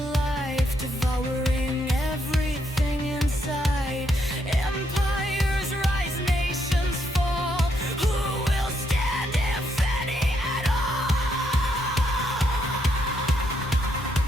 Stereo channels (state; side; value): normal; both; correlation 0.76